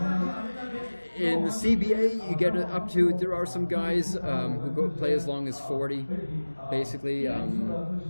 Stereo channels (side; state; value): both; inverted; correlation -1.00